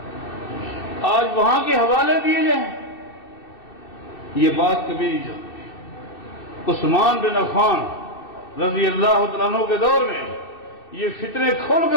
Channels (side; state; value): right; late; 2.6 ms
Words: آج وہاں کے حوالے دیے جائیں، یہ بات کبھی نہیں چلتی۔ عثمان بن عفان رضی اللہ تعالیٰ عنہ کے دور میں یہ فتنے کھل